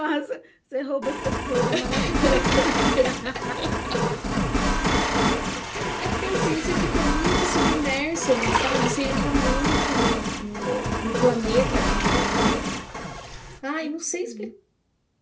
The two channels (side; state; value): both; identical; correlation 1.00